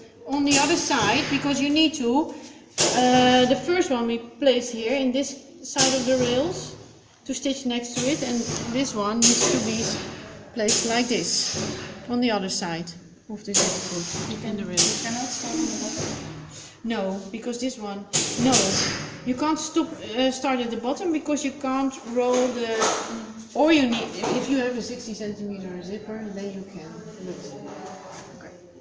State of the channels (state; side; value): identical; both; correlation 1.00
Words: on the other side because you need to. The first one we place here in this side of the rails to stitch next to it, and this one needs to be placed like this on the other side of the zipper foot in the rail. You cannot start on the bottom? No, because this one, no. You can't start at the bottom because you can't roll the. Or you need, if you have a 60 centimeter zipper, then you can. But